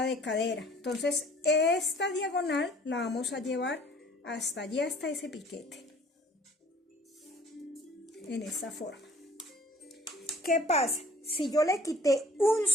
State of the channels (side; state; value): both; normal; correlation 0.52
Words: de cadera. Entonces esta diagonal la vamos a llevar hasta allí, hasta ese piquete, en esta forma. ¿Qué pasa? Si yo le quité 1